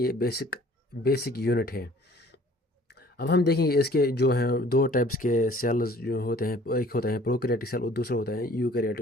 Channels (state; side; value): normal; both; correlation 0.53